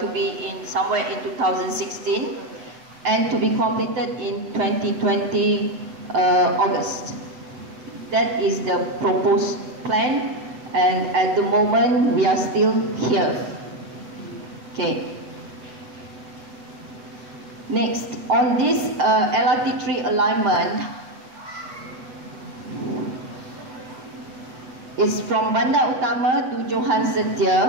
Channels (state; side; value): late; left; 8.1 ms